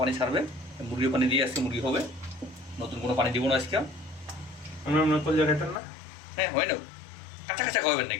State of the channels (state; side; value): drops out; right; at 5.8 s